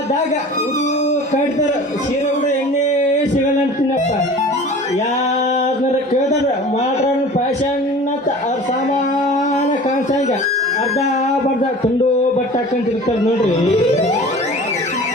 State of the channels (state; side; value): normal; both; correlation 0.41